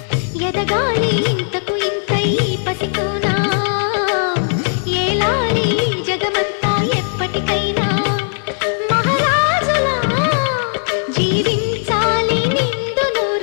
ఎదగాలి ఇంతకు ఇంత ఈ పసికోనా, ఏలాలి జగమంతా ఎప్పటికైనా, మహారాజులా జీవించాలి నిండు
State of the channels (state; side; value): silent; right; digital silence